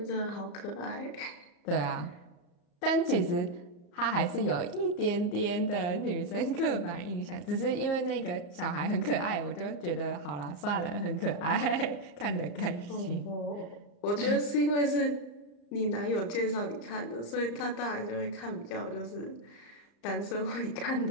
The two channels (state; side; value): late; right; 34 ms